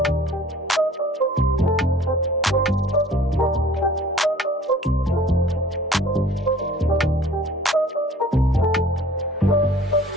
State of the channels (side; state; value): both; normal; correlation 0.50